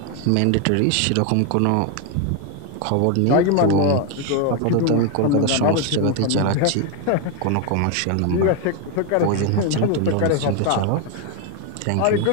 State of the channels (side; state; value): both; different; correlation 0.01